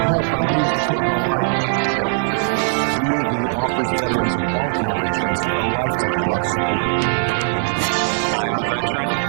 I needed to put my life back together. DAV offers veterans of all generations a lifetime of support. I am a veteran.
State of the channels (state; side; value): silent; left; 66 dB below the other